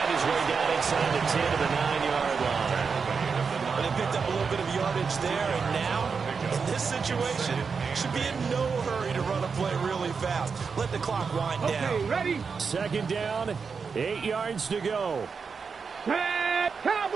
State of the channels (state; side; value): quieter; left; 5.5 dB